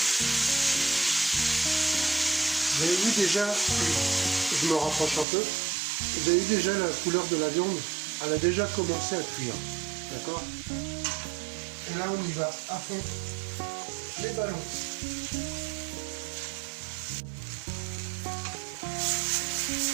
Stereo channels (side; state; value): left; drops out; at 5.2 s